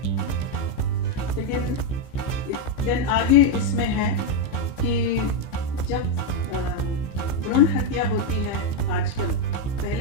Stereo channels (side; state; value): right; late; 15 ms